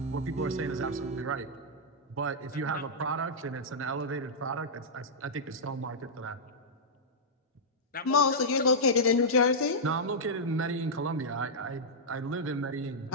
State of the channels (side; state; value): both; normal; correlation -0.09